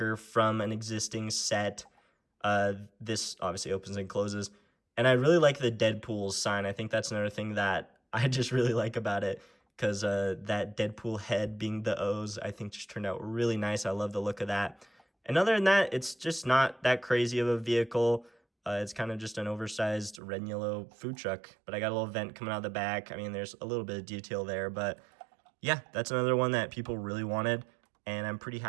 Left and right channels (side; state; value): left; drops out; at 20.2 s